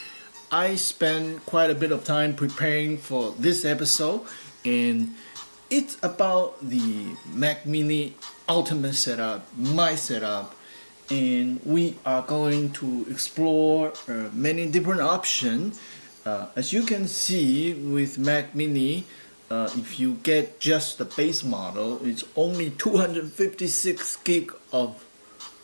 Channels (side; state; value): both; inverted; correlation -1.00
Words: I spent quite a bit of time preparing for this episode, and it's about the Mac Mini Ultimate setup, my setup, and we are going to explore many different options. As you can see with Mac Mini, if you get just the base model, it's only 256 gig of